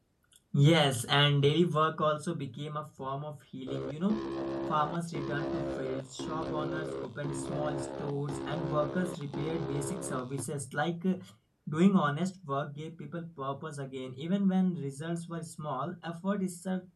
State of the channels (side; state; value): both; identical; correlation 1.00